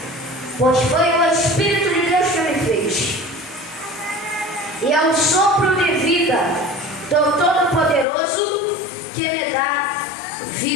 pois foi o Espírito de Deus que me fez, e é o sopro de vida do Todo-Poderoso que me dá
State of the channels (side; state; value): right; drops out; at 8.1 s